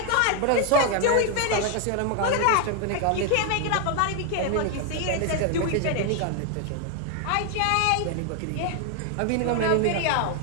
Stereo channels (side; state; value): both; different; correlation 0.01